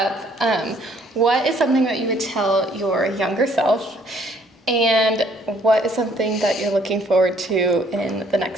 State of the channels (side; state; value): both; normal; correlation 0.63